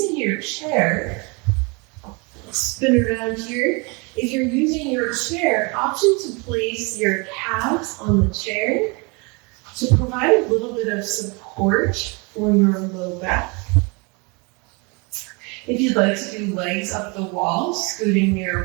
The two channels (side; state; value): left; quieter; 30.2 dB